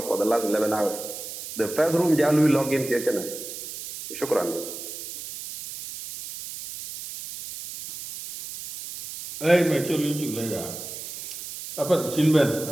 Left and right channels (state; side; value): noise; right; hiss, 10 dB below the sound